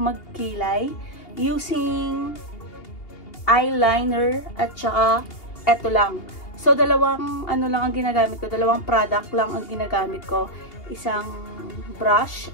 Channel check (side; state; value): right; late; 2.8 ms